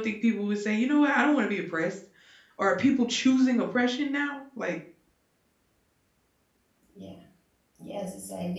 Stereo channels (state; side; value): identical; both; correlation 1.00